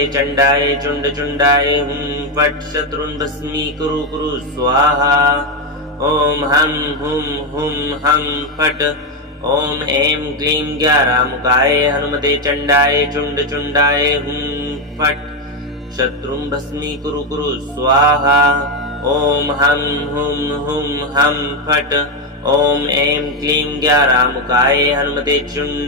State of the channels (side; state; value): both; normal; correlation 0.07